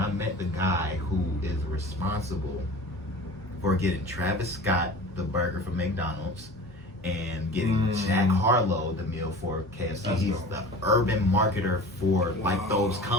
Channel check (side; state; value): both; normal; correlation 0.39